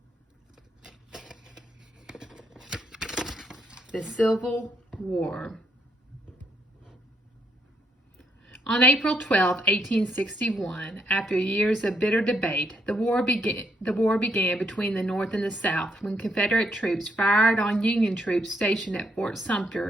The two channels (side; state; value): both; normal; correlation 0.76